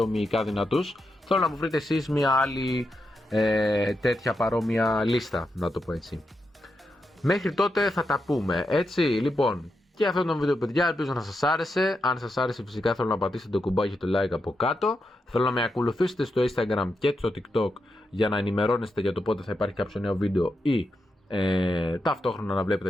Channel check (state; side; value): normal; both; correlation 0.85